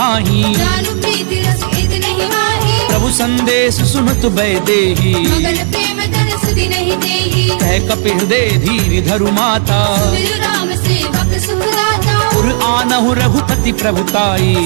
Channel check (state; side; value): silent; left; digital silence